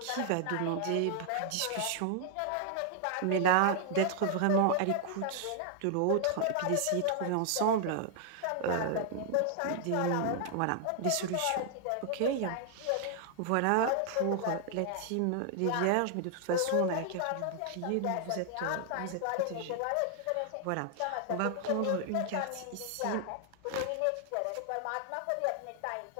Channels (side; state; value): both; different; correlation 0.00